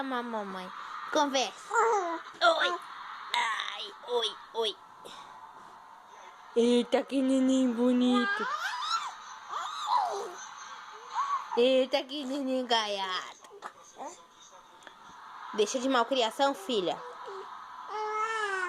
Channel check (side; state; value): both; identical; correlation 1.00